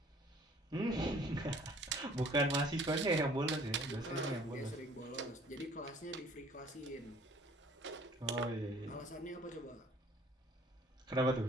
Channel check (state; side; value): normal; both; correlation 0.54